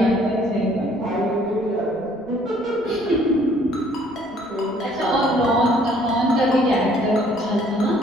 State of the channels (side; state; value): right; noise; rumble, 28 dB below the sound